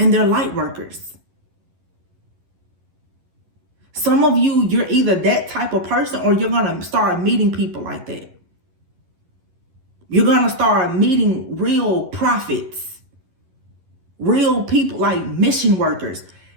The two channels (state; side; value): late; left; 11 ms